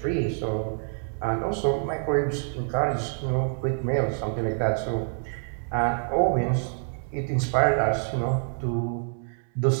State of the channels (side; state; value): left; silent; digital silence